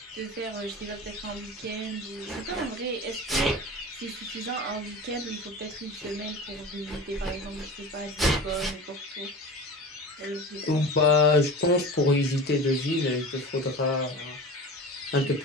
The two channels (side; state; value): both; normal; correlation 0.32